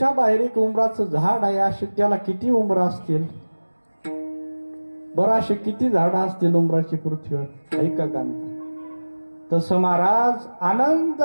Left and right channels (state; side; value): inverted; both; correlation -1.00